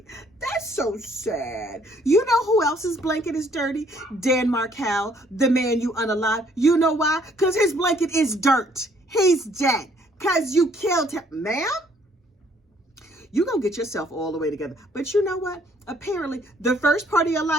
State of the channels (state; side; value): normal; both; correlation 0.64